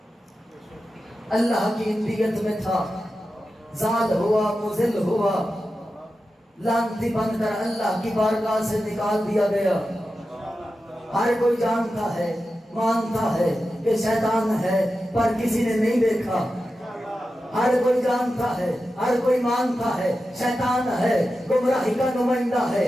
اللہ کی انبیت میں تھا، زال ہوا، مذل ہوا، لعنتی بن کر اللہ کی بارگاہ سے نکال دیا گیا۔ ہر کوئی جانتا ہے، مانتا ہے کہ شیطان ہے، پر کسی نے نہیں دیکھا۔ ہر کوئی جانتا ہے، ہر کوئی مانتا ہے شیطان ہے، گمراہی کا نمائندہ ہے،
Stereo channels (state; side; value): normal; both; correlation 0.91